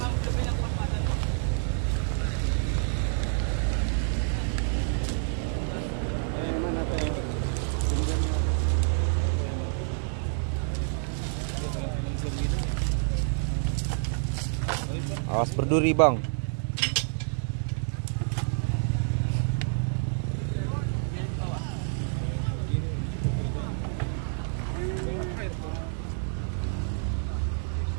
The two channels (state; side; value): silent; left; digital silence